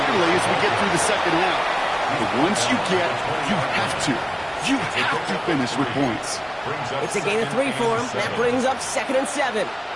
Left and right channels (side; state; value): both; identical; correlation 1.00